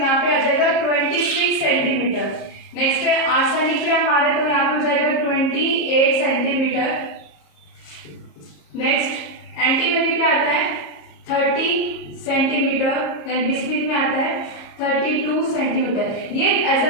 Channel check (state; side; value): late; right; 34 ms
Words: पे आ जाएगा 26 सेंटीमीटर। नेक्स्ट है आर्सेनिक पे हम आ रहे हैं तो यहाँ पे हो जाएगा 28 सेंटीमीटर। नेक्स्ट एंटीमनी पे आता है 30 सेंटीमीटर, देन बिस्मिथ में आता है 32 सेंटीमीटर। ये